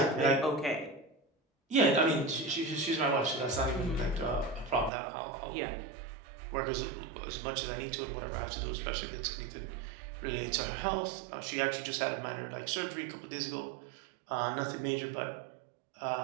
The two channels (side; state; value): left; drops out; at 4.9 s